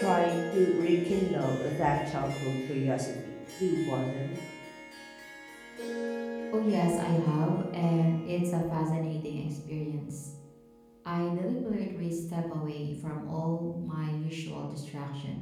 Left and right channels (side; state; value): both; identical; correlation 1.00